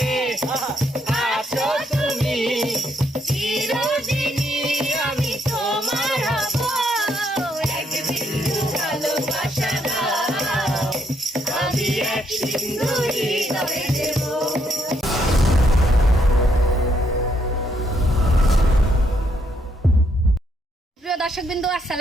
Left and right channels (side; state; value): both; normal; correlation 0.74